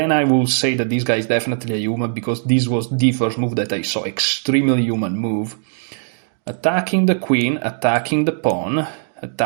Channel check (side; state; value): left; silent; 66 dB below the other